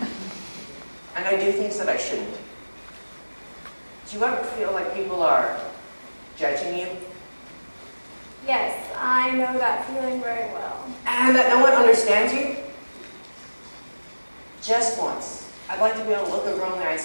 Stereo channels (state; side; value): inverted; both; correlation -1.00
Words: And I do things that I shouldn't. Do you ever feel like people are judging you? Yes, I know that feeling very well. And that no one understands you? Just once, I'd like to be able to look a girl in the eye and